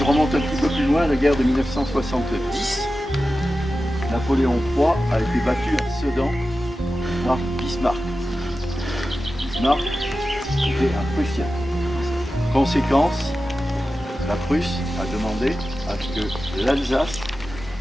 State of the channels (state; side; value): normal; both; correlation 0.93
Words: remonte un petit peu plus loin, la guerre de 1970, Napoléon III a été battu à Sedan par Bismarck. Bismarck était un Prussien. Conséquence, la Prusse a demandé à ce que l'Alsace